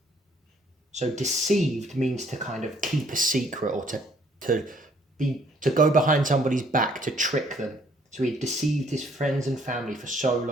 So deceived means to kind of keep a secret or to go behind somebody's back, to trick them. So he deceived his friends and family for so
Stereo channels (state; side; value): normal; both; correlation 0.63